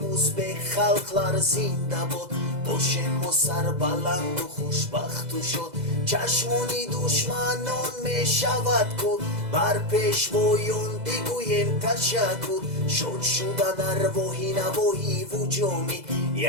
و ازبک خلقlar زنده باد، باشیم و سر بلند و خوشبخت و شاد. چشمانی دشمنان می شود کن، بر پیشوایان بگویم تشکر. شد شدن ارواحی نواحی و جامی،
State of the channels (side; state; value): left; late; 2.0 ms